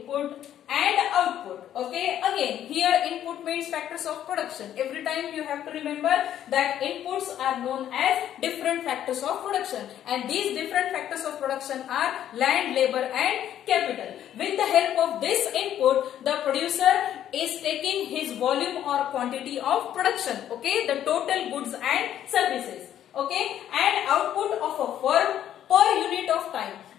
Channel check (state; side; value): quieter; right; 10.9 dB